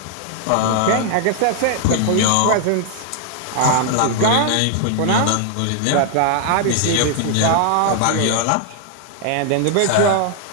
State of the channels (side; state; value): both; different; correlation 0.00